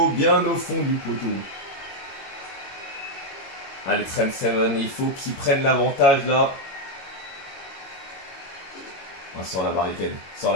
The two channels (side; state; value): right; late; 21 ms